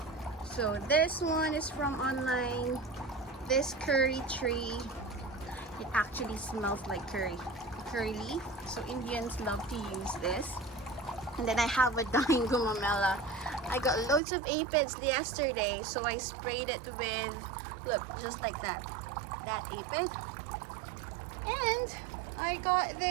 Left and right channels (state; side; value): drops out; left; at 14.2 s